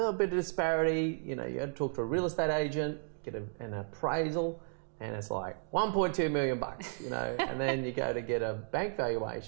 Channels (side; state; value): left; silent; digital silence